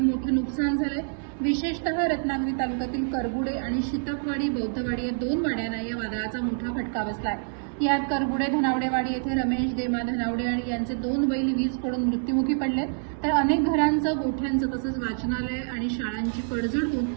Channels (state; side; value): silent; left; digital silence